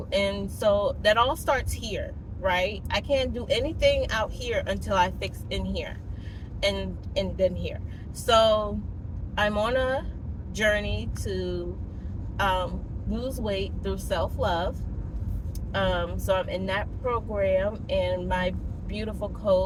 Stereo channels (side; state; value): both; identical; correlation 1.00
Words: And so that all starts here, right? I can't do anything out here until I fix in here, and then here. So I'm on a journey to lose weight through self-love. So I'm in that program, and my beautiful